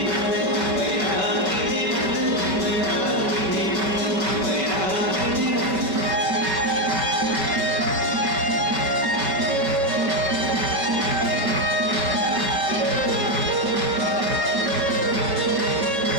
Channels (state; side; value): late; left; 5.4 ms